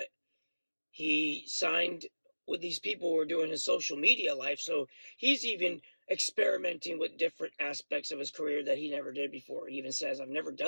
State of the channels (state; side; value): inverted; both; correlation -1.00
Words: he signed with these people who were doing his social media life, so he's even experimenting with different aspects of his career that he never did before. He even says, I've never